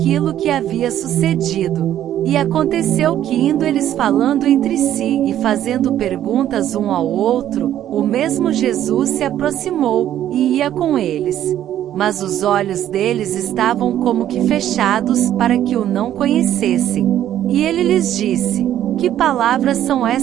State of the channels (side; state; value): left; quieter; 11.6 dB